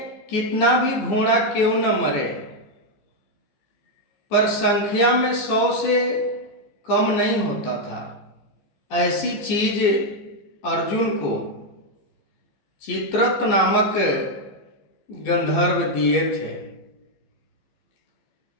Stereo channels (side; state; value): right; late; 14 ms